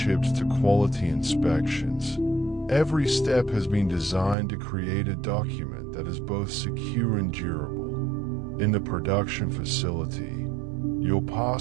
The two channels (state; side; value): drops out; left; at 4.4 s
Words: to quality inspections, every step has been designed to create a document that is both secure and durable. In the production facility, your